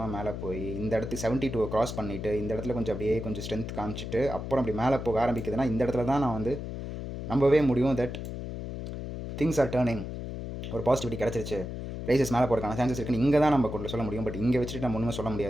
மேலே போய் இந்த இடத்துக்கு 72 கிராஸ் பண்ணிவிட்டு இந்த இடத்துல கொஞ்சம் அப்படியே கொஞ்சம் ஸ்ட்ரென்த் காமிச்சிட்டு அப்புறம் அப்படி மேலே போக ஆரம்பிக்குதுன்னா இந்த இடத்துல தான் நான் வந்து நம்பவே முடியும் தட் திங்ஸ் ஆர் டேர்னிங், ஒரு பாசிட்டிவிட்டி கிடச்சிருச்சு, ப்ரைஸஸ் மேலே போகிறதுக்கான சான்சஸ் இருக்குன்னு இங்கே தான் நம்ம கொண்டு சொல்ல முடியும். பட் இங்கே வச்சுட்டு நம்ம ஒன்றுமே சொல்ல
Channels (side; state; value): left; noise; hum, 7 dB below the sound